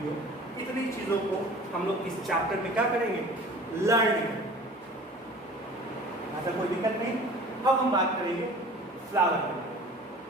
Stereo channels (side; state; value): both; normal; correlation 0.44